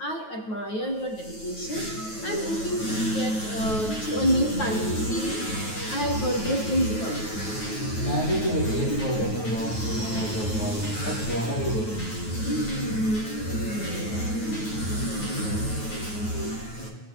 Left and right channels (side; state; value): right; late; 9.3 ms